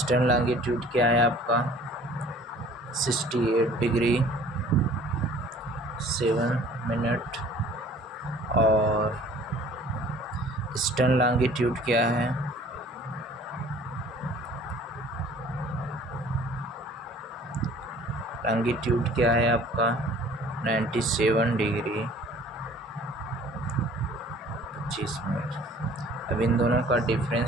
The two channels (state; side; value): normal; both; correlation 0.51